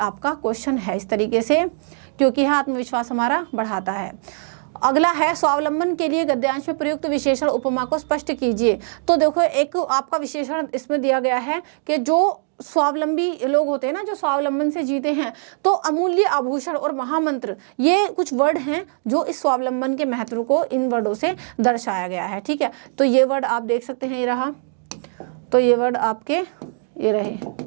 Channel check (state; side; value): silent; left; 61 dB below the other